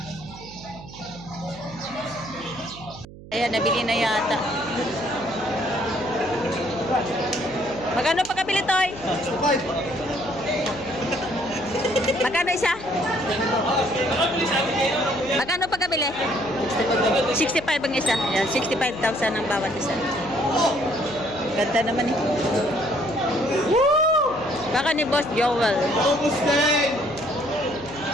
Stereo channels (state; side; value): noise; right; hum, 17 dB below the sound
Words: Ayan, nabili na yata. Magkano pa pagkabili, Toy? Magkano isa? Magkano pagkabili? 65 ang isa. Ayan, 65,000 ang bawat isa. Ganda naman eh. Baka ni Boss Joel.